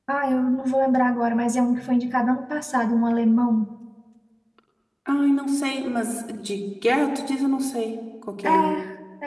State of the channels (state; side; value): identical; both; correlation 1.00